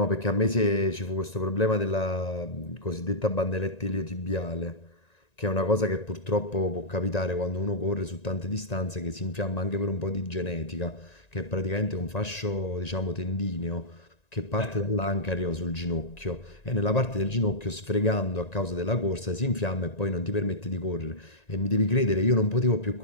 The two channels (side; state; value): right; late; 1.9 ms